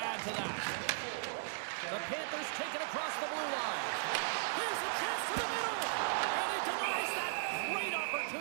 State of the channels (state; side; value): silent; left; digital silence